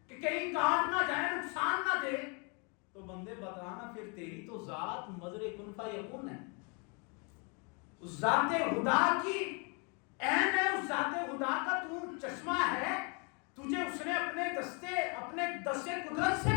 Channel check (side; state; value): right; quieter; 34.3 dB